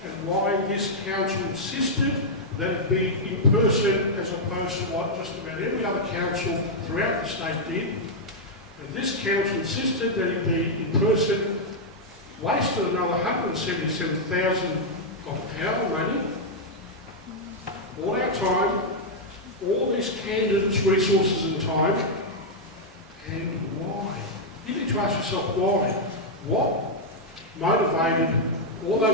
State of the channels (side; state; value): both; normal; correlation -0.03